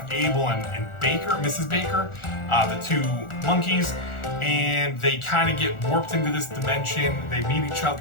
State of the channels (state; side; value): late; right; 1.4 ms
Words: Abel and Baker, Mrs. Baker, the 2 monkeys, and they kind of get warped into this dimension. They meet each